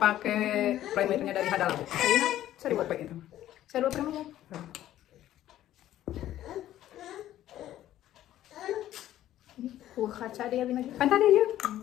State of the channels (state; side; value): quieter; right; 13.0 dB